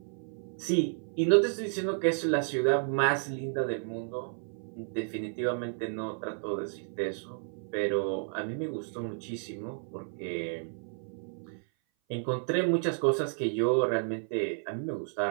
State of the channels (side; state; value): left; silent; 57 dB below the other